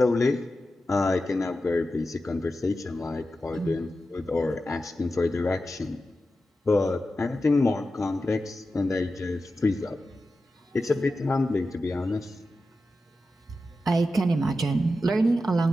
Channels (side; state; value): both; normal; correlation 0.92